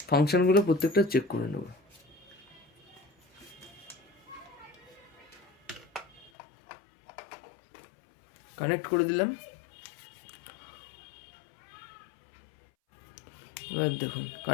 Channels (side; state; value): right; drops out; at 6.3 s